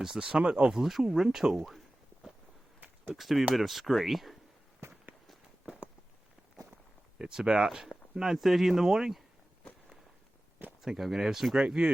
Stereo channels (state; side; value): normal; both; correlation 0.96